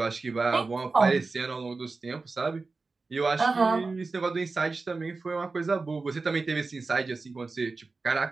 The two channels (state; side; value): quieter; left; 3.9 dB